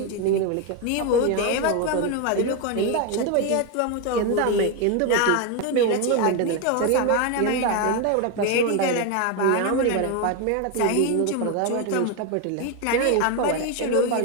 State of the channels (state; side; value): different; both; correlation 0.02